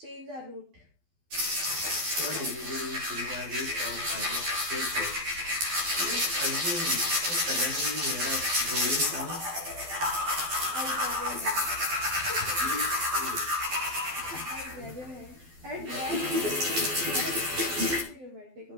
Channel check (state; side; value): late; left; 12 ms